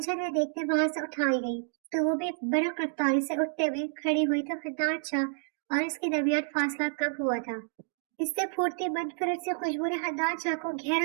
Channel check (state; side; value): silent; left; digital silence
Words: में देखते वहां से उठाई गई तो वो भी बरक रफ्तारी से उठते हुए खड़ी हुई तो हन्नान शाह और इसके दरमियान फासला कम हुआ था। इससे फूटती मनफरत से खुशबू ने हन्नान शाह को